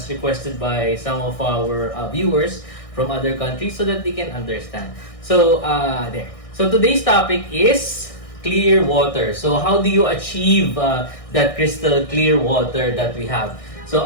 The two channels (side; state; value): right; late; 1.6 ms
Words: requested by some of our viewers from other countries so that they can understand. So there. So today's topic is clear water. So how do you achieve that crystal clear water that we have? So